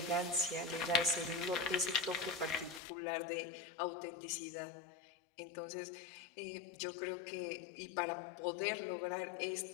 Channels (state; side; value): drops out; right; at 2.8 s